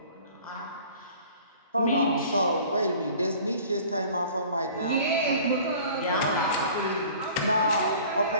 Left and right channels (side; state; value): both; inverted; correlation -0.47